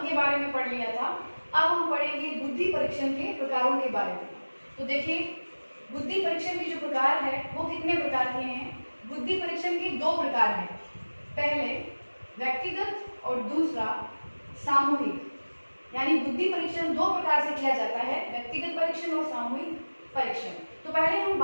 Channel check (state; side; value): inverted; both; correlation -1.00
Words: के बारे में पढ़ लिया था। अब हम पढ़ेंगे बुद्धि परीक्षण के प्रकारों के बारे में। तो देखिए, बुद्धि परीक्षण के जो प्रकार है वो कितने प्रकार के हैं। बुद्धि परीक्षण के दो प्रकार हैं, पहले व्यक्तिगत और दूसरा सामूहिक। यानी बुद्धि परीक्षण दो प्रकार से किया जाता है, व्यक्तिगत परीक्षण और सामूहिक परीक्षण। तो पहले हम